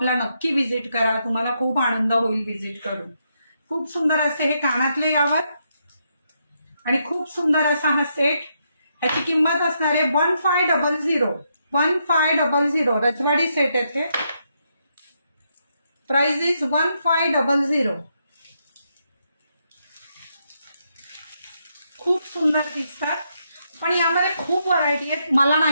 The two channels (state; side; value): inverted; both; correlation -0.79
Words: नक्की व्हिजिट करा, तुम्हाला खूप आनंद होईल व्हिजिट करून. खूप सुंदर असे हे कानातले यावर आणि खूप सुंदर असा हा सेट. ह्याची किंमत असणार आहे 1500. 1500 रजवाडी सेट आहे. Price is 1500. खूप सुंदर दिसतात पण यामध्ये खूप व्हरायटी आहेत. मला